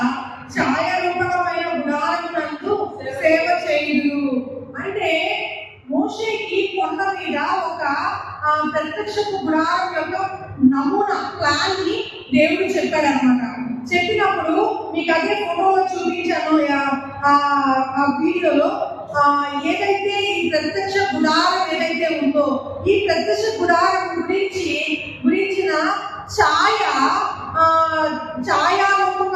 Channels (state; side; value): identical; both; correlation 1.00